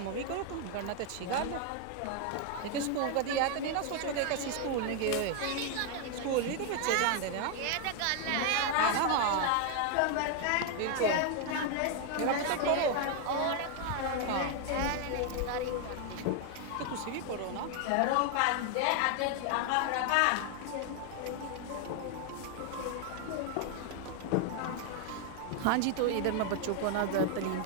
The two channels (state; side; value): different; both; correlation 0.01